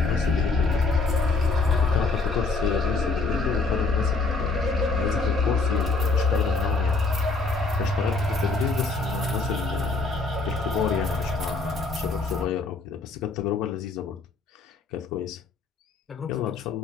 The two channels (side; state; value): right; quieter; 3.9 dB